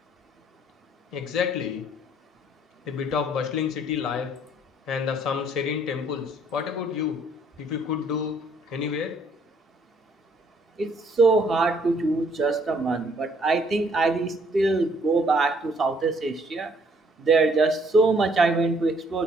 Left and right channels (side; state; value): both; normal; correlation 0.64